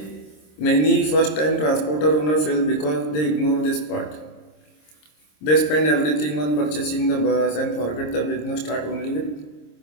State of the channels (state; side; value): late; right; 26 ms